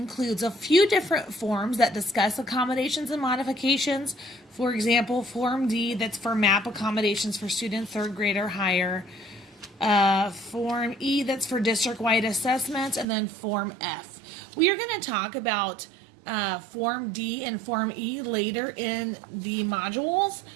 a few different forms that discuss accommodations and modifications. For example, Form D, that's for MAP accommodations for students 3rd grade or higher. Form E, that's for district-wide assessments, and then Form F. We are going to talk about Form D and Form E later in the modules.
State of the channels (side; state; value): left; drops out; at 13.1 s